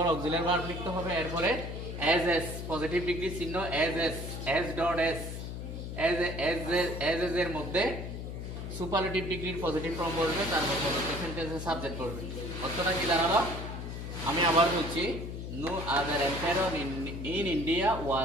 অক্সিলারি ভার্ব লিখতে হবে, এরপরে এজ পজিটিভ ডিগ্রি চিহ্ন এজ এর মধ্যে সুপারলেটিভ ডিগ্রির পজিটিভ ফর্ম বলবে, তারপর প্রদত্ত সেন্টেন্সের সাবজেক্ট বলবে। অর্থটা কি দাঁড়ালো, আমি আবার বলছি, no other empire in India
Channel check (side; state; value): left; noise; hum, 7 dB below the sound